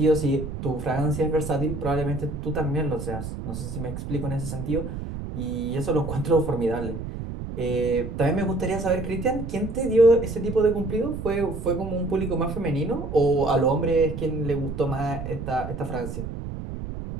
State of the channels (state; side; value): noise; right; rumble, 7 dB below the sound